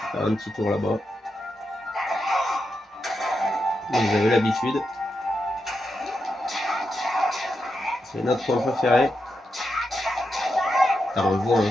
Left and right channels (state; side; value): normal; both; correlation 0.86